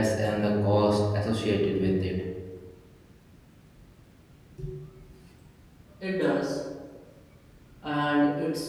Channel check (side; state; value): both; identical; correlation 1.00